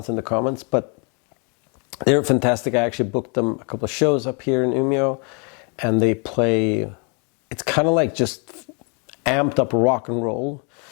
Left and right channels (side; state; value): right; quieter; 36.1 dB